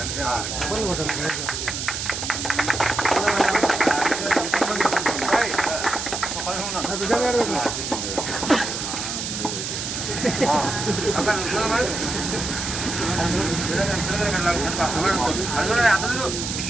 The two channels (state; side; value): noise; right; hiss, 4 dB below the sound